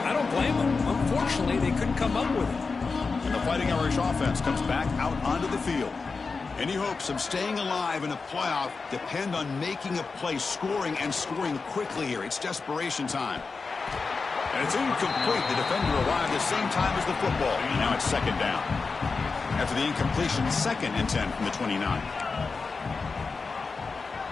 I don't blame them. Unfortunately, they couldn't come up with it. And the Fighting Irish offense comes back out onto the field. Any hopes of staying alive in a playoff depend on making a play, scoring, and scoring quickly here. It's desperation time. And it's incomplete. The defender arrived the same time as the football. And now it's 2nd down. After the incompletion, 2nd and 10 from the 29.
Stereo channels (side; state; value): right; quieter; 4.5 dB